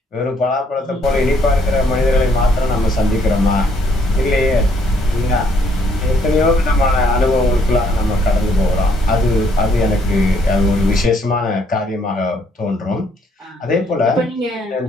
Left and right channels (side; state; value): both; normal; correlation 0.68